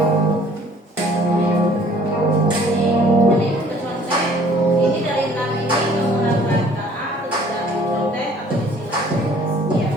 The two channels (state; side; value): normal; both; correlation 0.55